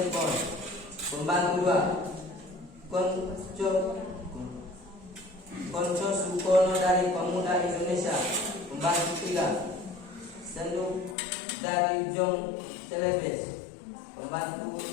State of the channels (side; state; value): right; drops out; at 11.2 s